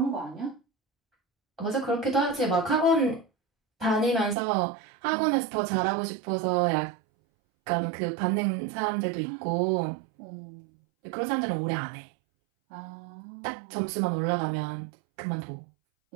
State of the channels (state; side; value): drops out; left; at 4.4 s